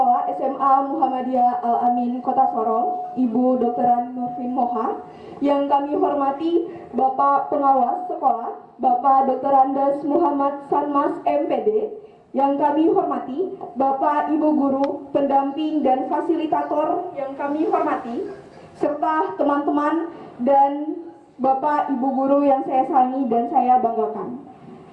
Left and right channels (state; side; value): identical; both; correlation 1.00